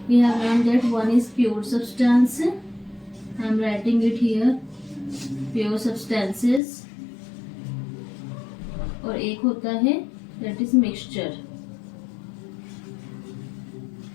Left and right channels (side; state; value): right; drops out; at 6.6 s